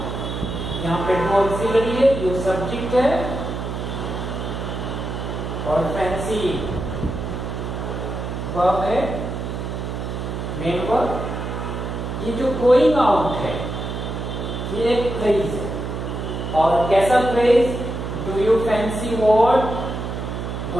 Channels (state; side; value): noise; right; hum, 5 dB below the sound